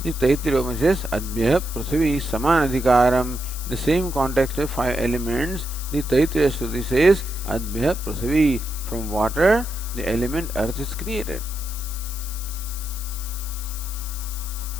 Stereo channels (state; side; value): noise; left; hiss, 11 dB below the sound